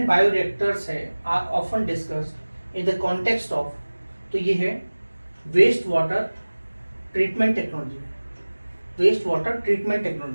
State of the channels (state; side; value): inverted; both; correlation -1.00